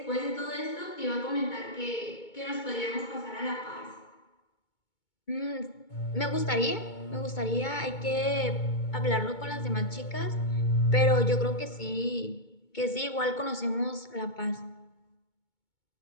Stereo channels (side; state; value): right; late; 2.2 ms